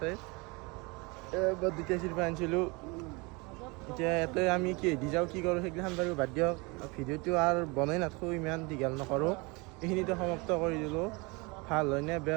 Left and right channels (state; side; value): quieter; left; 27.3 dB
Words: এবাৰ 2টা চিৰপা আনিছিলোঁ এতিয়া ইয়াতে আমি কি দি যাওঁ কি কৰোঁ সেইগিলাখান বাৰু বাদ দিয়ক ভিডিঅ'টো আৰু বনাই নাথাকোঁ ইমান দীঘল নকৰোঁ এইখিনিতে সমাপ্ত কৰি দিলোঁ ভাল হয় নে